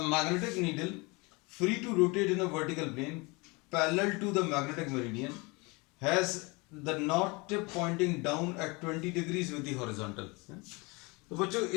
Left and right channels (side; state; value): right; quieter; 26.9 dB